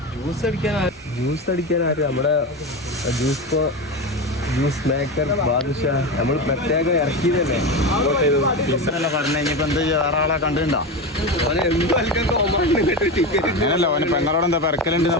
ജ്യൂസ് അടിക്കാൻ ആര്? നമ്മുടെ ജ്യൂസ് മേക്കർ ബാദുഷ നമ്മൾ പ്രത്യേകം ഇറക്കിയതല്ലേ. പറഞ്ഞ ഇനിയിപ്പോ എന്ത് വേറെ ആളെ കണ്ടിട്ടുണ്ടോ? അങ്ങനല്ല, ഓന് പെങ്ങളോട് എന്താ പെരക്കലുണ്ട്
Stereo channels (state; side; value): normal; both; correlation 0.20